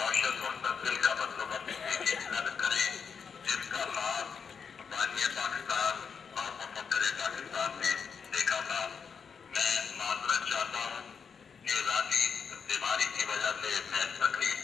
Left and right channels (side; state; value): right; quieter; 6.3 dB